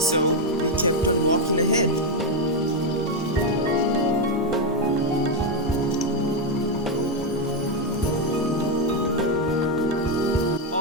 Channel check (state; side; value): normal; both; correlation 0.05